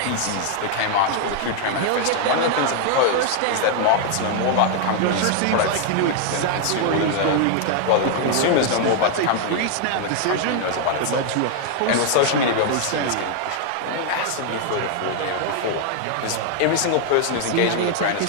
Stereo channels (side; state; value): both; different; correlation 0.00